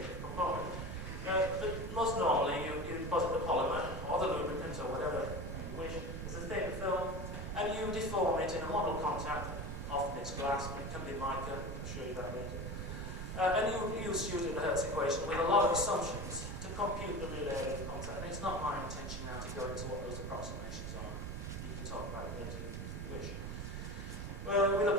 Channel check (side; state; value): right; noise; rumble, 5 dB below the sound